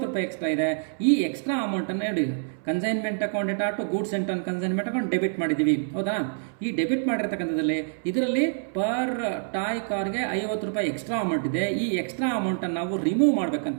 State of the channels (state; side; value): silent; left; 61 dB below the other